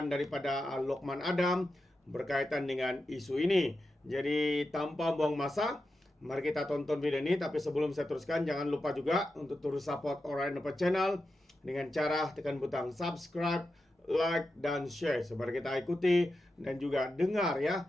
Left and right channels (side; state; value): both; normal; correlation 0.89